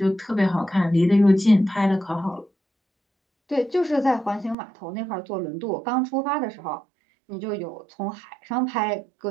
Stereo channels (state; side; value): drops out; left; at 4.5 s